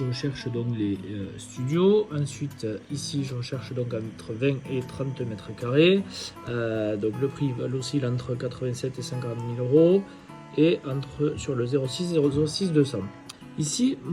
recherche donc les studios, ensuite ici je recherche donc entre 20 et 30 mètres carrés, donc le prix oscille entre 87 et 50 000 euros et sur le 06 et 06 200. Ici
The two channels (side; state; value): both; identical; correlation 1.00